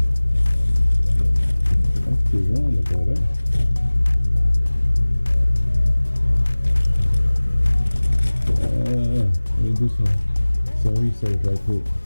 Do some research right quick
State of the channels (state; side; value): inverted; both; correlation -1.00